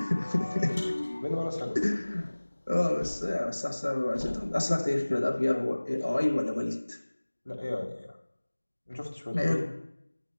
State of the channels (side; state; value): both; inverted; correlation -1.00